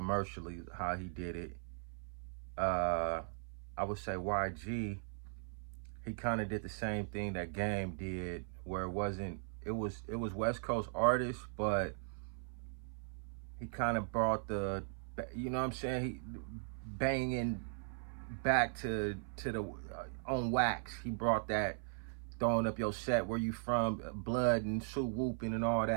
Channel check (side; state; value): left; silent; 52 dB below the other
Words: how he did it. I would say YG, he kind of did the same thing that Game did, where it was West Coast artists, but he kind of brought the, you know what I'm saying, he banging back to the on wax. He brought that throwing up your set, where you from, blood and suit whooping and all